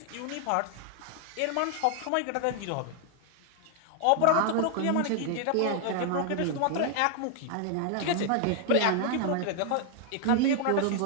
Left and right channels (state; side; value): different; both; correlation 0.00